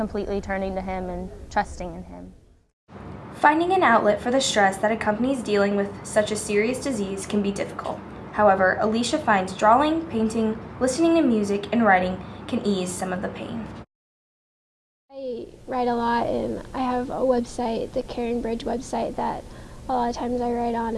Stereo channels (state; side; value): identical; both; correlation 1.00